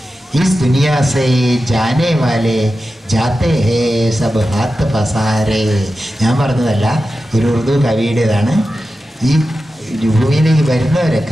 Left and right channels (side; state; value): both; normal; correlation 0.92